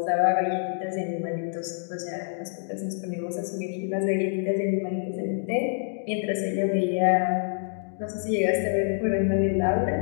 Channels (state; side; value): silent; right; digital silence